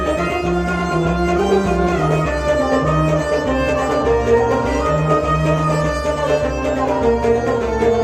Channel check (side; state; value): right; noise; hum, 24 dB below the sound